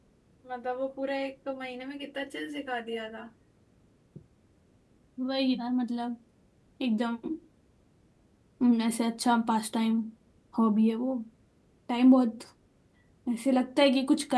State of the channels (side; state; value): both; identical; correlation 1.00